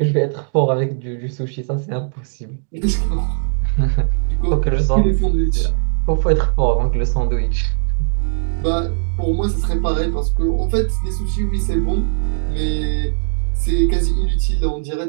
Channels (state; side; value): silent; left; digital silence